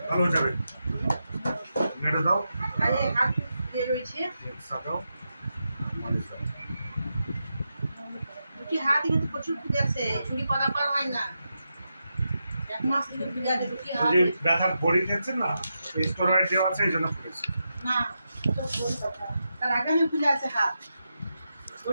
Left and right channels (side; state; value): both; inverted; correlation -0.87